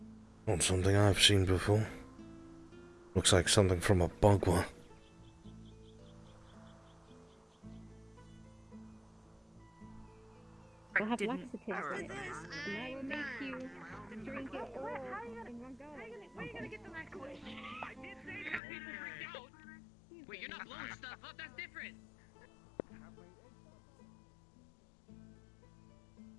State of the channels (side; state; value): right; drops out; at 18.6 s